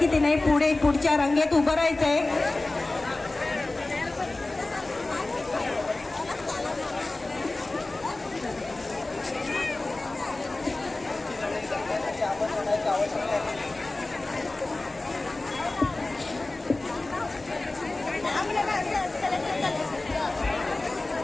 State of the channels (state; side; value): quieter; right; 3.0 dB